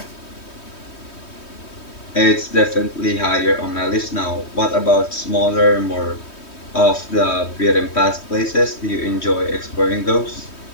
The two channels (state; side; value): late; right; 3.2 ms